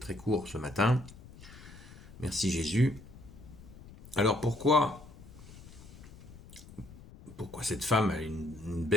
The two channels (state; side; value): noise; left; rumble, 18 dB below the sound